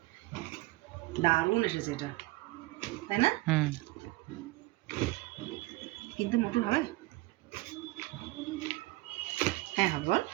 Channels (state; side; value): quieter; left; 20.0 dB